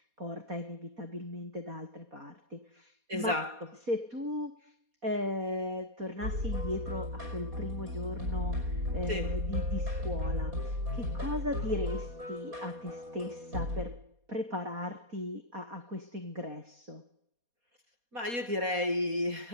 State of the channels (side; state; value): left; late; 4.2 ms